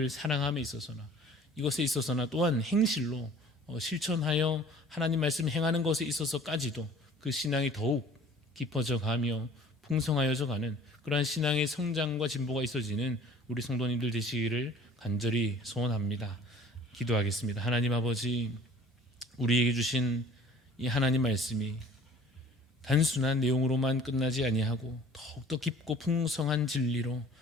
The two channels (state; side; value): normal; both; correlation 0.49